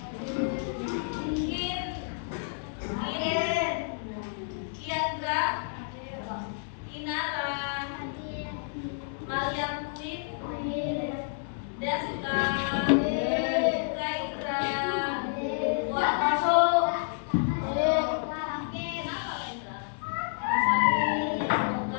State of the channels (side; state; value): right; silent; digital silence